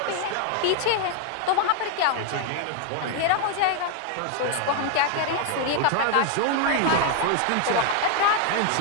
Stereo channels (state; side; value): different; both; correlation 0.01